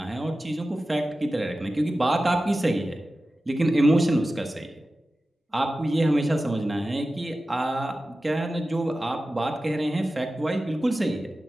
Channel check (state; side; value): normal; both; correlation 0.95